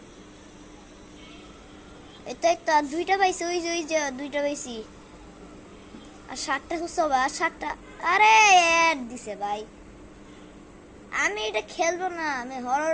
এটা একটা আর 2টা পাইছি, ওই যে 2টা পাইছি, আর 7টা খুঁজতে হবে, আর 7টা। আরে অ্যাড দিছে ভাই। আমি এটা খেলবো না, আমি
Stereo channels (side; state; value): both; identical; correlation 1.00